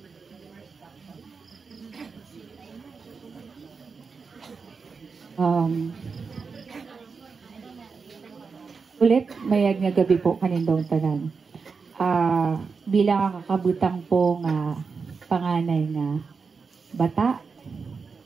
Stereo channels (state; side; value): quieter; left; 5.1 dB